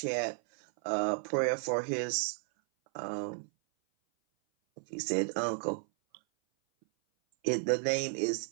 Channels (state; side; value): silent; left; 56 dB below the other